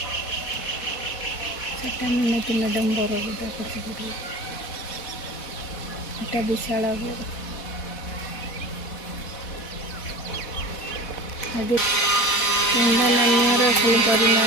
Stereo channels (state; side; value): late; right; 4.1 ms